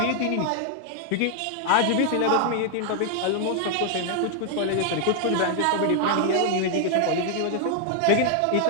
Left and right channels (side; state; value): both; different; correlation 0.00